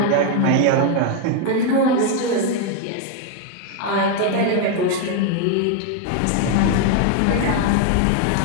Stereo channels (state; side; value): different; both; correlation 0.01